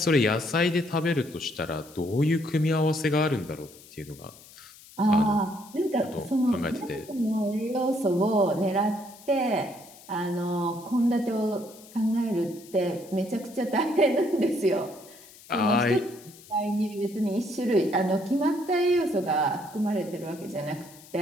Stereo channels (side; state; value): left; noise; hiss, 21 dB below the sound